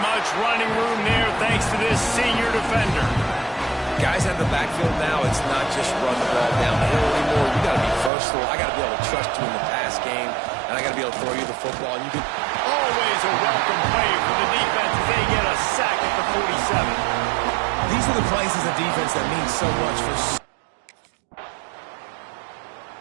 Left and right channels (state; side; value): drops out; left; at 8.1 s